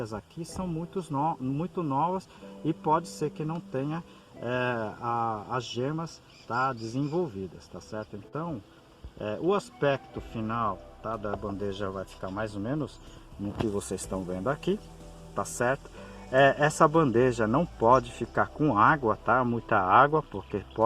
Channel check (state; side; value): identical; both; correlation 1.00